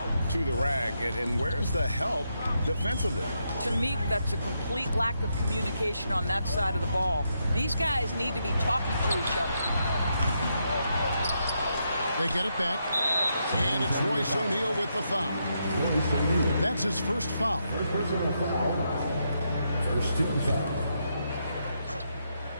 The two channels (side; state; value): both; inverted; correlation -0.81